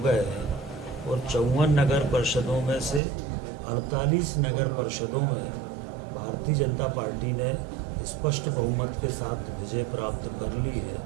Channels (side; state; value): left; drops out; at 3.0 s